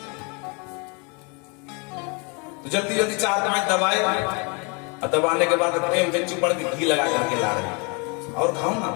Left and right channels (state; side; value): quieter; right; 32.6 dB